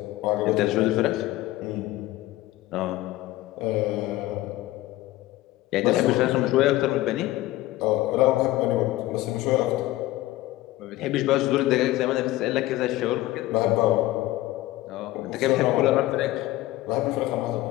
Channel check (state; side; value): quieter; right; 16.7 dB